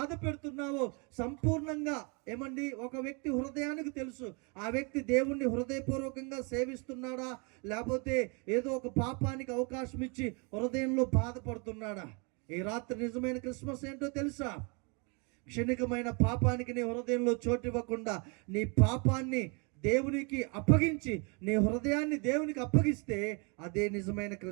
పెడుతున్నావో సంపూర్ణంగా ఏమండి ఒక వ్యక్తి హృదయానికి తెలుసు. ఆ వ్యక్తి దేవుణ్ణి హృదయపూర్వకంగా సేవిస్తున్నాడా, లేకపోతే ఏదో ఒక పాపానికి అవకాశం ఇచ్చి హృదయంలో బాధపడుతున్నాడా? ఈ రాత్రి నిజమైన క్రిస్మస్ ఏంటో తెలుసా? క్షణికమైన పాపానికి నీ హృదయంలో చోటివ్వకుండా నీ పాపాన్ని దేవునికి అప్పగించి నీ హృదయాన్ని దేవునికి అప్పగిస్తే అదే నిజమైన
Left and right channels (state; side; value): quieter; left; 33.2 dB